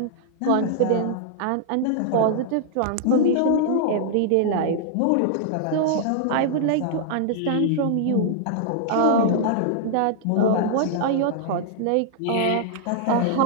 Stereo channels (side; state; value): both; different; correlation -0.01